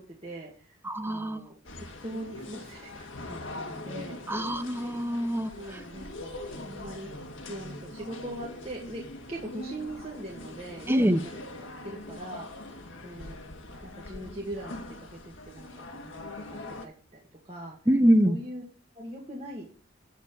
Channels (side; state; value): both; normal; correlation 0.84